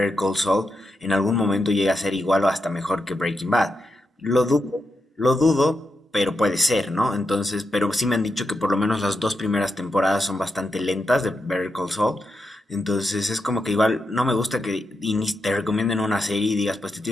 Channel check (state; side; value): normal; both; correlation 0.86